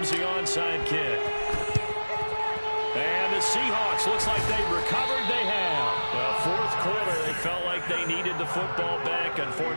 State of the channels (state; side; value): inverted; both; correlation -1.00